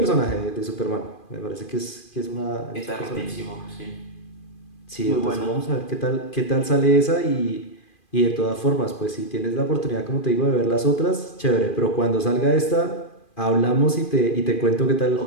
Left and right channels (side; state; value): right; late; 2.4 ms